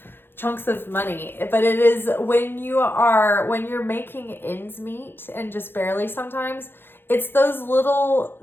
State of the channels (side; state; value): right; late; 0.10 ms